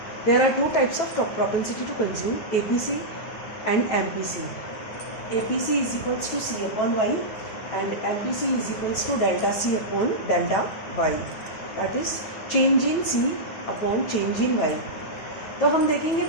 There are two types of propensity to consume, APC and MPC. APC is equals to C upon Y and MPC is equals to delta C upon delta Y. That is change in C upon change in Y. तो हम देखेंगे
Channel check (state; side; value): late; right; 9.1 ms